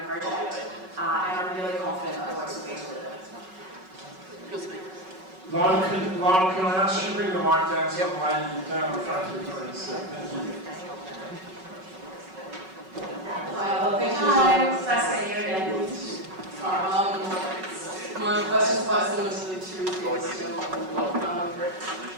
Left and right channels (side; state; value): left; late; 5.3 ms